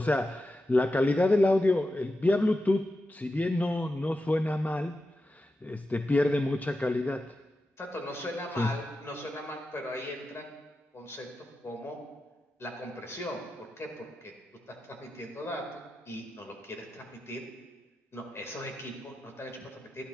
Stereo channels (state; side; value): normal; both; correlation 0.91